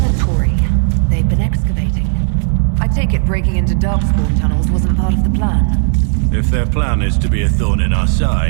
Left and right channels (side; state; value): left; silent; 67 dB below the other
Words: They've been excavating. I take it breaking into Darkspawn tunnels wasn't part of the plan. If their plan is to be a thorn in our